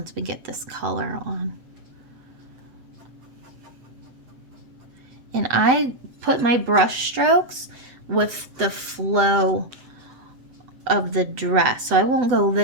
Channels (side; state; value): left; late; 8.0 ms